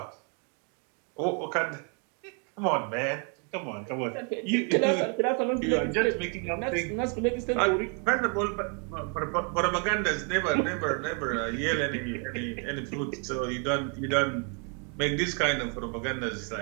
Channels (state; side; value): quieter; left; 38.8 dB